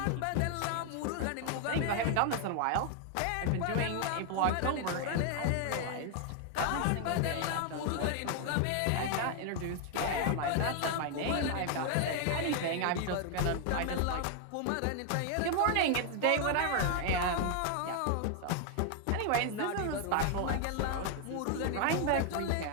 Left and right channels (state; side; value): different; both; correlation 0.00